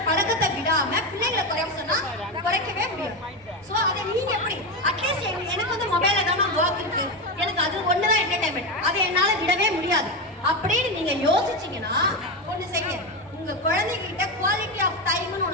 பழக்கத்தை விடாம பிள்ளைகளை குறைய சொன்னா குறைக்கவே முடியும். சோ அதை நீங்க எப்படி அட்லீஸ்ட் எனக்கு வந்து மொபைல்ல தான் ஒர்க் இருக்கு, எனக்கு அது ஒண்ணுதான் என்டர்டைன்மெண்ட், அதை என்னால விடவே முடியாது அப்படின்னு நீங்க யோசிச்சீங்கன்னா ஒண்ணு செய்ய, உங்க குழந்தைகிட்ட குவாலிட்டி ஆஃப் டைம்னு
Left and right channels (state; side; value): normal; both; correlation 0.14